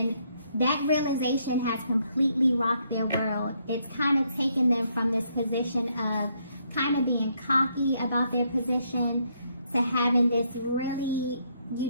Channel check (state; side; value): inverted; both; correlation -0.73